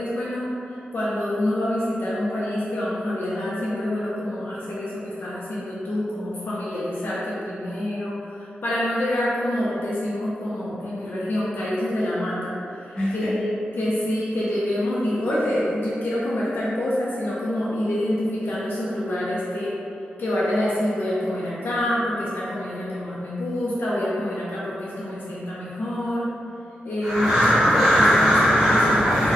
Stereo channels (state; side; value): normal; both; correlation 0.87